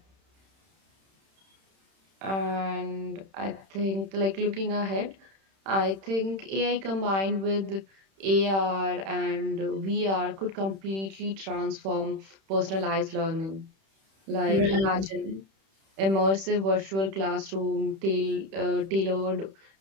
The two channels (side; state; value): left; late; 31 ms